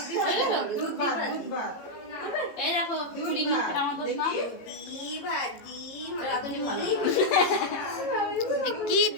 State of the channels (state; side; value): late; right; 18 ms